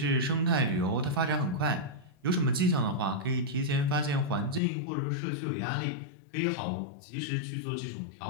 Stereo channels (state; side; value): drops out; right; at 4.6 s